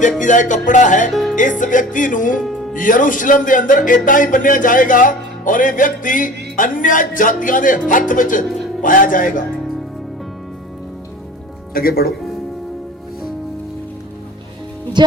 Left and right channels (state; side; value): normal; both; correlation 0.40